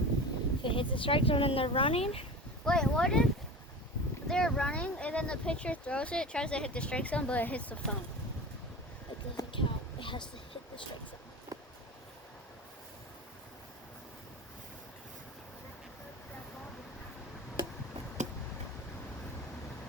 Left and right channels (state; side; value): normal; both; correlation 0.32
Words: If it hits the strike zone and they're running, Wait, what if they're running and then the pitcher throws it, tries to hit the strike zone, but it hits the phone? it doesn't count. It has to hit the strike zone.